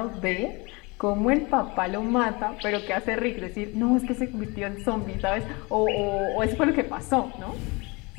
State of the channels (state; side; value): quieter; right; 26.8 dB